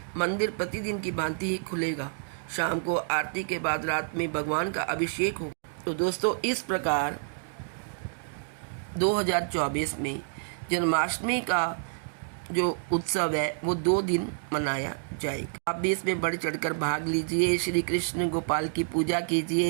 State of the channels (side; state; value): left; silent; digital silence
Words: मंदिर प्रतिदिन की भांति ही खुलेगा। शाम को आरती के बाद रात में भगवान का अभिषेक होगा। तो दोस्तों, इस प्रकार 2024 में जन्माष्टमी का जो उत्सव है वो 2 दिन मनाया जाएगा। आप भी इसमें बढ़ चढ़कर भाग लीजिए, श्री कृष्ण गोपाल की पूजा